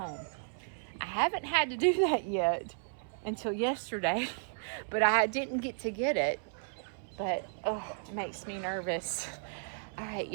I haven't had to do that yet until yesterday, but I didn't get to get it. But, oh, it makes me nervous. All right,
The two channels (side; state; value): left; silent; 55 dB below the other